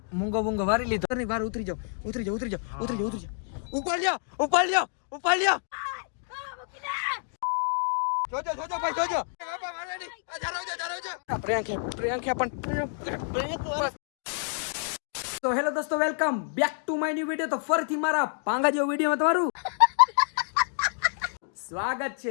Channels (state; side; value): silent; right; digital silence